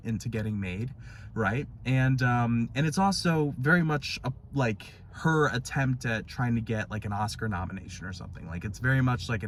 into getting made, right? And it's also very much like her attempt at trying to get like an Oscar nomination or something. Like, it's very much like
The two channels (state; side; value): identical; both; correlation 1.00